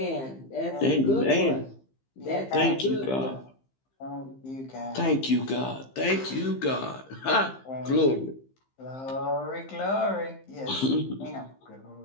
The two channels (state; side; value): late; right; 15 ms